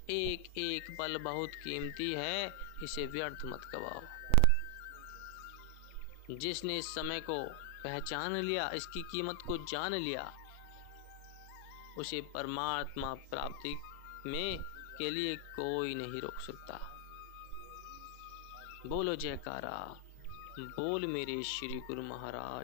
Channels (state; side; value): different; both; correlation 0.00